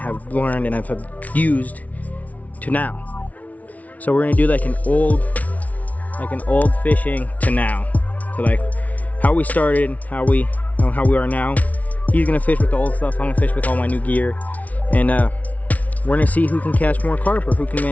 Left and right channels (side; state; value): right; late; 0.071 ms